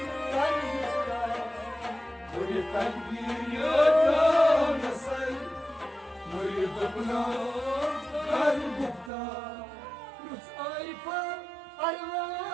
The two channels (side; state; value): left; drops out; at 9.1 s